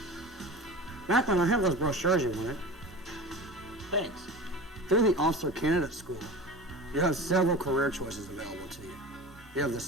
Macklin, I have those brochures you wanted. Thanks. Through the Officer Candidate School, you have several career choices available to you. You have the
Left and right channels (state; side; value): normal; both; correlation 0.33